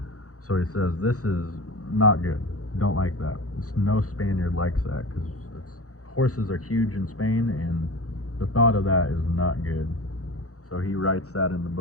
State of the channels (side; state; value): right; late; 0.65 ms